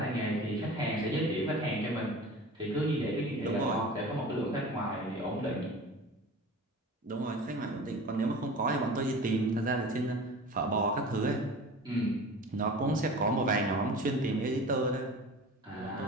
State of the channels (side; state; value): both; normal; correlation 0.38